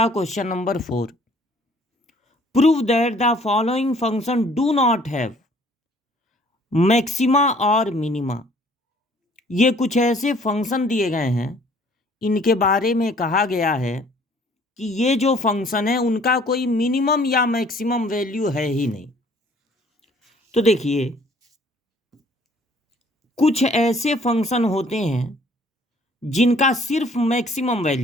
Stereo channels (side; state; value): both; normal; correlation 0.57